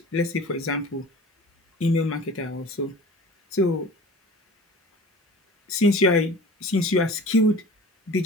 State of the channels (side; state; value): both; normal; correlation 0.41